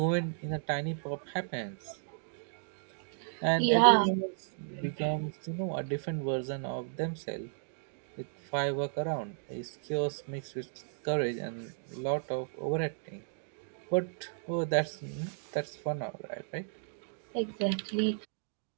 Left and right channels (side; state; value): left; silent; digital silence